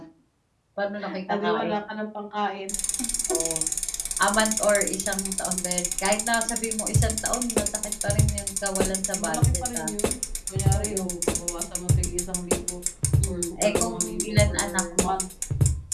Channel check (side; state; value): both; identical; correlation 1.00